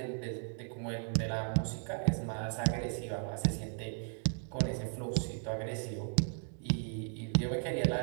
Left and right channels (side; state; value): left; silent; 54 dB below the other